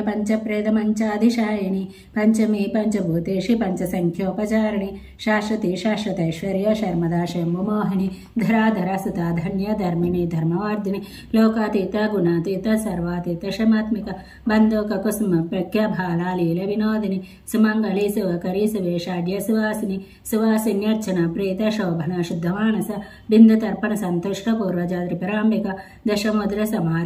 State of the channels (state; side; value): identical; both; correlation 1.00